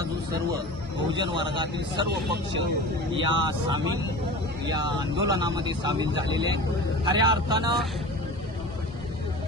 जो सर्व बहुजन वर्गातील सर्व पक्ष या आंदोलनामध्ये सामील झालेले आहेत। खऱ्या अर्थानं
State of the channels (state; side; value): normal; both; correlation 0.35